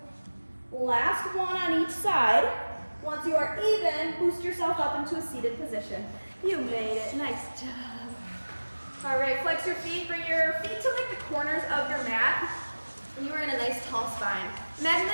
last one on each side. Once you are even, boost yourself up into a seated position. You made it, nice job. All right, flex your feet, bring your feet to like the corners of your mat. And you are in a nice tall spine. Imagine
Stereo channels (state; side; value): inverted; both; correlation -1.00